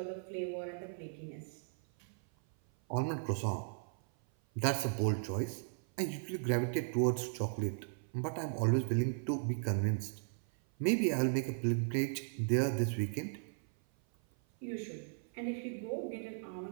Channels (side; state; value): left; silent; 53 dB below the other